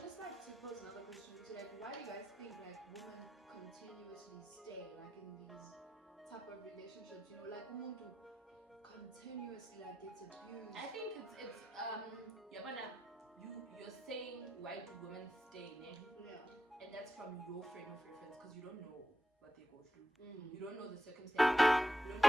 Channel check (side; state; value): both; normal; correlation 0.87